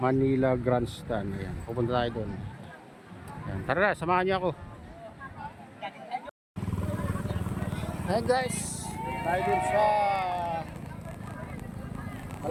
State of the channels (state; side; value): identical; both; correlation 1.00